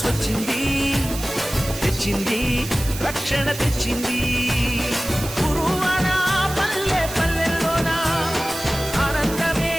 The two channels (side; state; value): right; noise; hiss, 10 dB below the sound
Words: వచ్చింది, తెచ్చింది రక్షణ తెచ్చింది. గురువాన పల్లె పల్లెల్లోన ఆనందమే